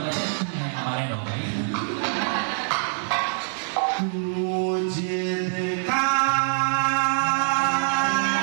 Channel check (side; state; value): left; silent; digital silence